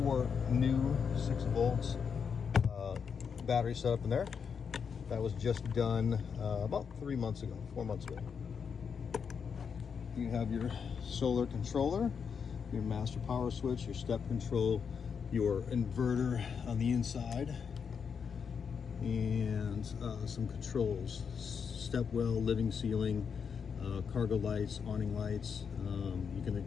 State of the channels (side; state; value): right; quieter; 6.5 dB